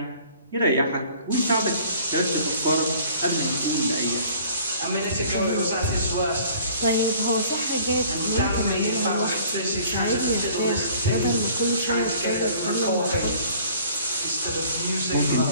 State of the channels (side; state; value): both; inverted; correlation -0.52